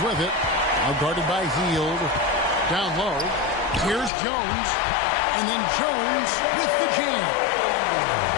it. Now guarded by Hield. Down low. Here's Jones. And then Jones with the jam.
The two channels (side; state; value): right; drops out; at 4.1 s